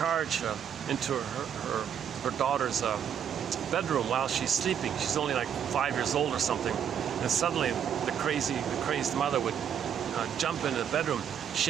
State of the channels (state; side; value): quieter; left; 8.7 dB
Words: into her daughter's bedroom while she's sleeping. She's only like 5 years old or something, and suddenly the crazed mother would jump into the bedroom,